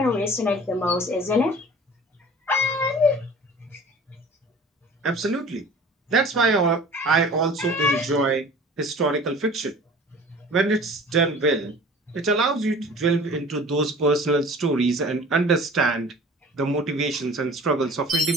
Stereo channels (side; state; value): both; normal; correlation 0.44